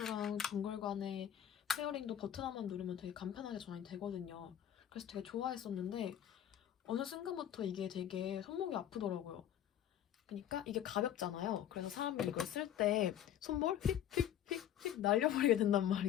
동글 간의 페어링도 버튼 하나만 누르면 되게 간편하게 전환이 되거든요. 그래서 되게 좋아했었는데 어느 순간부터 이게 되게 손목이 아프더라고요. 그러니까 이게 가볍잖아요. 그래서 사람이 이걸 쓸 때 손볼 휙휙휙휙 날려버리게 된단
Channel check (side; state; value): right; quieter; 10.7 dB